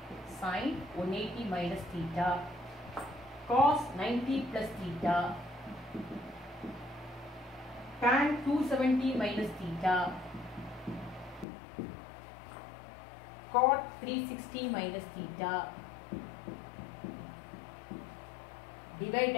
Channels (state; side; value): drops out; right; at 11.5 s